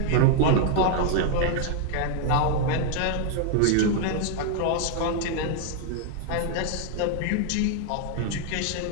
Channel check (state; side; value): different; both; correlation 0.00